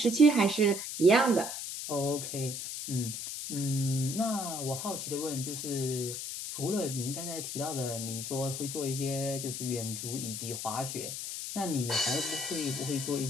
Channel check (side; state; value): left; noise; hiss, 5 dB below the sound